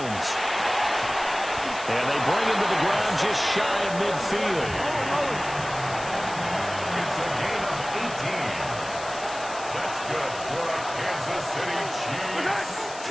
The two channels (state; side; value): noise; left; hiss, 14 dB below the sound